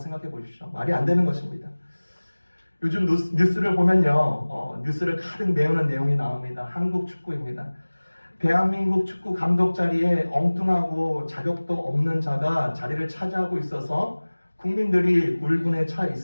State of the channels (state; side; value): inverted; both; correlation -1.00